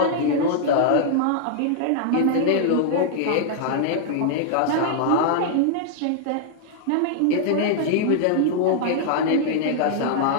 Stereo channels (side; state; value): both; different; correlation -0.01